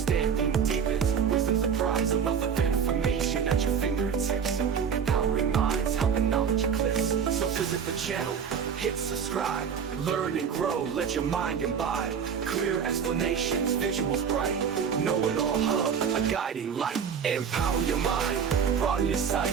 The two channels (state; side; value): quieter; left; 7.1 dB